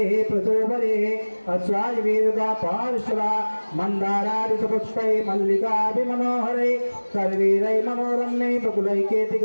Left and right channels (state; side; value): inverted; both; correlation -1.00